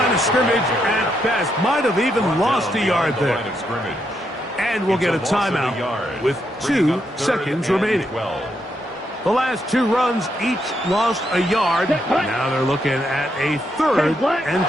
of scrimmage at best. Might have even lost a yard there. And we'll get a timeout with 2 seconds remaining. The last 2 runs each lost a yard. Now they're looking at a 3rd and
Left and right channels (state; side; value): normal; both; correlation 0.79